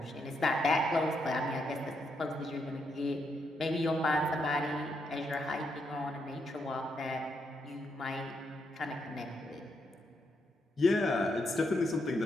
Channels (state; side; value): normal; both; correlation 0.79